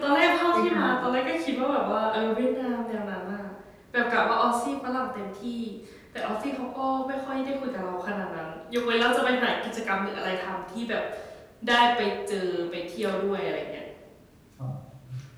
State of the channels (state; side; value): identical; both; correlation 1.00